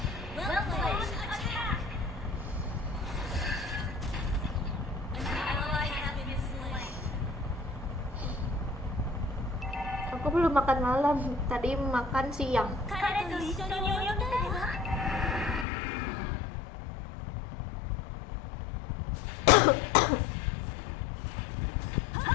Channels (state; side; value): drops out; right; at 15.7 s